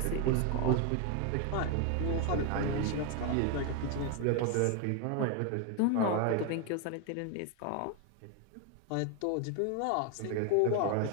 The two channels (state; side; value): different; both; correlation 0.01